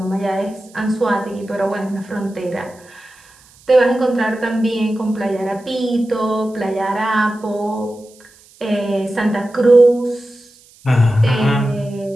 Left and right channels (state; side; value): noise; right; hiss, 27 dB below the sound